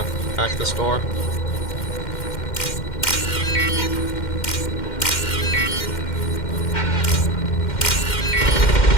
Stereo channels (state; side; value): late; right; 2.1 ms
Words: hack this door.